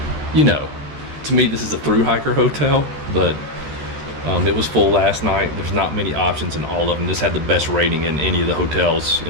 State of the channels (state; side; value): late; left; 13 ms